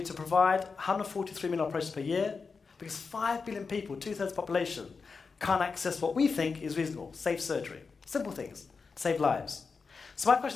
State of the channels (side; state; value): right; quieter; 4.9 dB